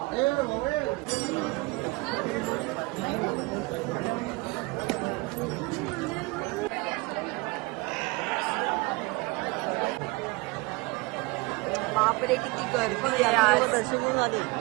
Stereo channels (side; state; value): left; quieter; 24.8 dB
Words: बापरे किती गर्दी आहे आज. दर्शन करून आले.